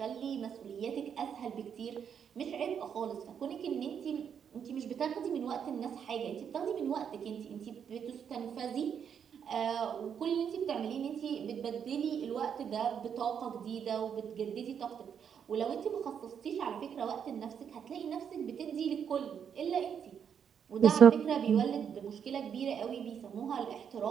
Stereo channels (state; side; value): quieter; left; 7.8 dB